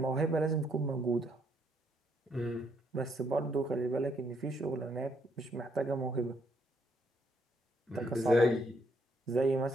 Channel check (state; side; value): normal; both; correlation 0.72